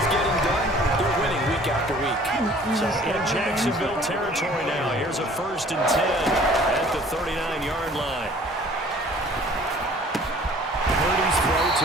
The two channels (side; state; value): both; normal; correlation 0.52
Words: getting done, they're winning week after week. So in Jacksonville territory now, here's a 1st and 10 at the 39-yard line. Purdy's throw